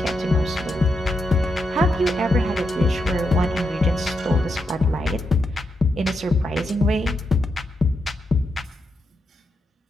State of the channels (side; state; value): both; normal; correlation 0.83